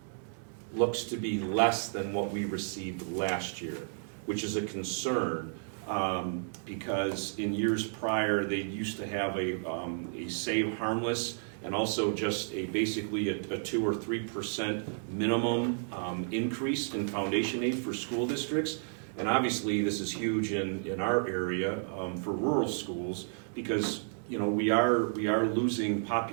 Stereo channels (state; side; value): silent; left; digital silence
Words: looks to be less than what we received last year, which is a concern, because in years prior, they used to have a save harmless and also just basically a 2 or 3% minimum increase in foundation aid for school districts. And obviously this is huge in our area for rural schools, because we are losing